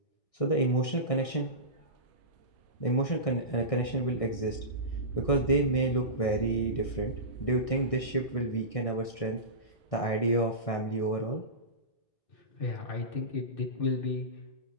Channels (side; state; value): right; late; 1.6 ms